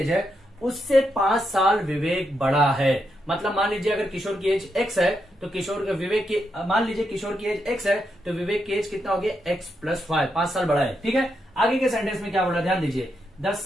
है उससे 5 साल विवेक बड़ा है। मतलब मान लीजिए अगर किशोर की एज x है तो किशोर विवेक की, मान लीजिए किशोर की एज x है तो विवेक की एज कितना हो गया x प्लस 5 साल बड़ा है। ठीक है, आगे के सेंटेंस में क्या बोला ध्यान दीजिए, द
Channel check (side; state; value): both; normal; correlation 0.82